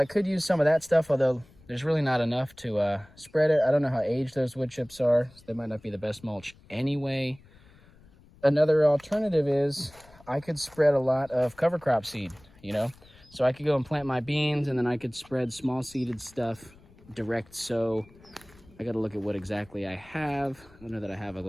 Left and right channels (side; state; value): left; noise; rumble, 26 dB below the sound